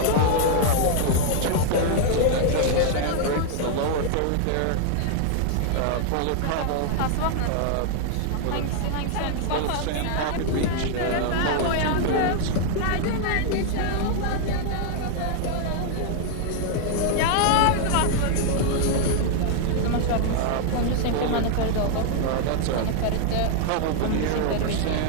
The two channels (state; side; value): different; both; correlation 0.00